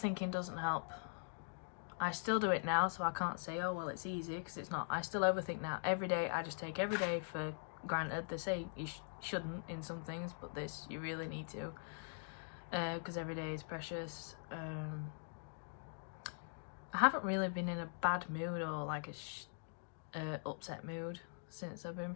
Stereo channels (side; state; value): right; silent; digital silence